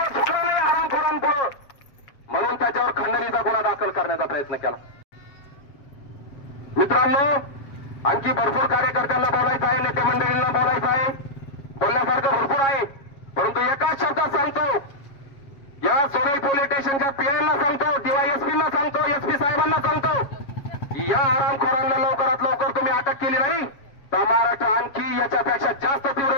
झुकला नाही हरामखोरांपुढं, म्हणून त्याच्यावर खंडणीचा गुन्हा दाखल करण्याचा प्रयत्न केला. मित्रांनो, आणखी भरपूर कार्यकर्त्यांना बोलायचं आहे, नेते मंडळींना बोलायचं आहे, बोलण्यासारखं भरपूर आहे. परंतु एकाच शब्दात सांगतो, या सोनई पोलीस स्टेशनच्या पीआयना सांगतो, डीवायएसपींना सांगतो, एसपी साहेबांना सांगतो, या हरामखोरांना लवकरात लवकर तुम्ही अटक केली नाही तर महाराष्ट्र आणखी याच्यापेक्षा जास्त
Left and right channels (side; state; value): right; late; 7.3 ms